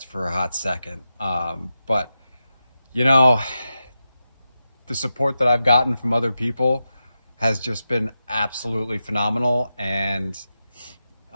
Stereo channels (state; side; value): inverted; both; correlation -0.90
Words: for a hot second. But, you know, the support that I've gotten from other people has just been absolutely phenomenal, and